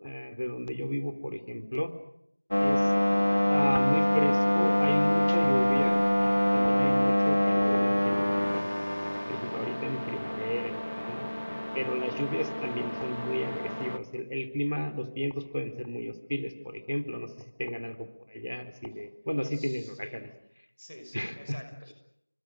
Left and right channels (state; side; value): inverted; both; correlation -1.00